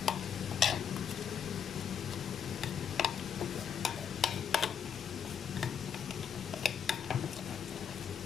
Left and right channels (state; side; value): quieter; right; 7.5 dB